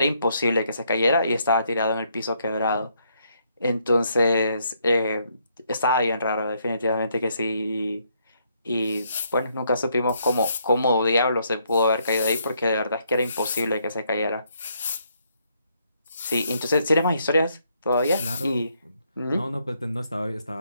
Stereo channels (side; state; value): both; inverted; correlation -0.73